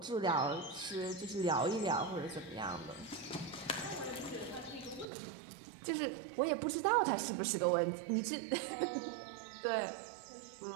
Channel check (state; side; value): drops out; left; at 5.1 s